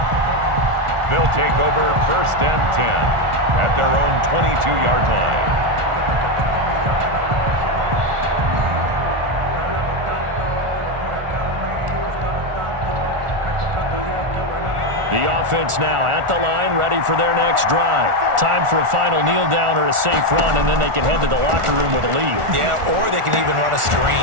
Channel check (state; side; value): late; left; 1.4 ms